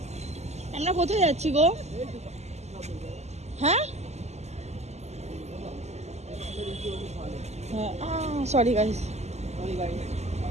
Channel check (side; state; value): left; late; 0.32 ms